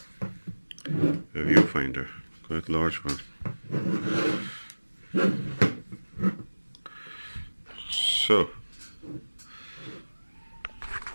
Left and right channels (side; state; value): both; inverted; correlation -1.00